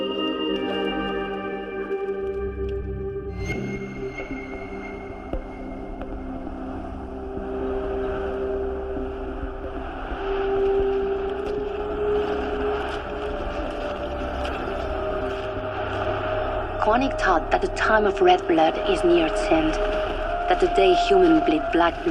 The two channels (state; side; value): identical; both; correlation 1.00